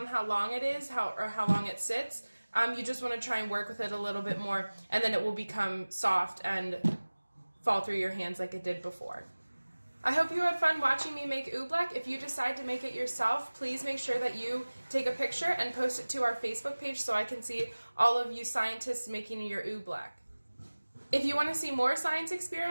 how long it is or how long it sits, you just want to try and work with it a little bit more, and then it will become soft and fall through your hands like it did before. I hope you had fun watching me make oobleck. If you decide to make it yourself, please make sure that you take a picture and post it to our Facebook page so I can see all of you scientists making your oobleck. If you want to see more science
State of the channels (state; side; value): inverted; both; correlation -1.00